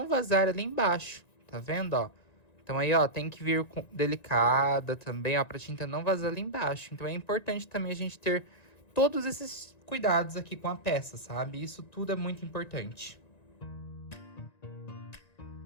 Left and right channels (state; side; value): late; right; 1.9 ms